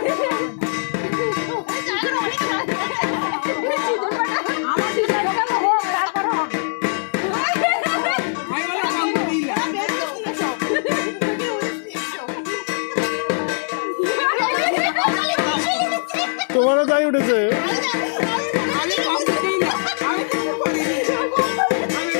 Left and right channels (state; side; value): silent; right; 65 dB below the other